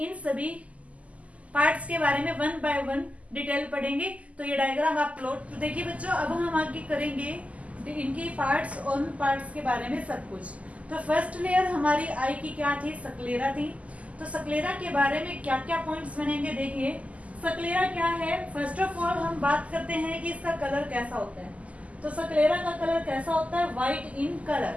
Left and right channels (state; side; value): late; left; 0.069 ms